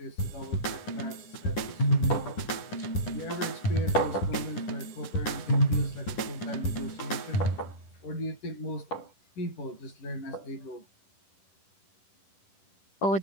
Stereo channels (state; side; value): late; right; 10 ms